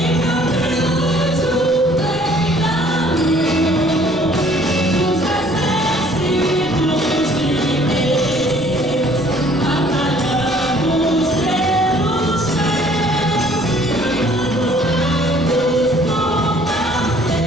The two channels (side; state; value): right; noise; rumble, 21 dB below the sound